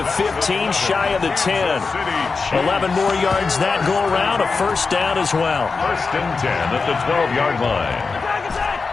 15, shy of the 10. 11 more yards that go around, a 1st down as well. 1st and 10 at the 12-yard line.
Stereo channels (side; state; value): right; quieter; 4.5 dB